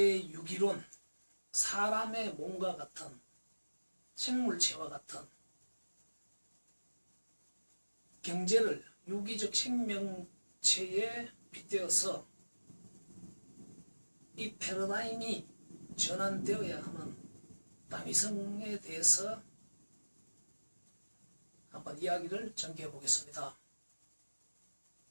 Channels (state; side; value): inverted; both; correlation -1.00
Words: 사람의 몸과 같은 생물체와 같은 경제를 유기적 생명체에 빗대어서 이 패러다임이 전환되어야 하는 다미성에 대해서 한번 이야기를 전개해 보겠습니다.